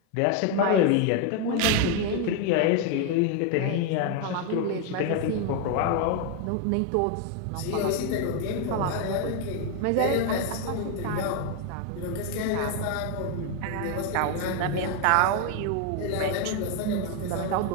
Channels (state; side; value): different; both; correlation 0.01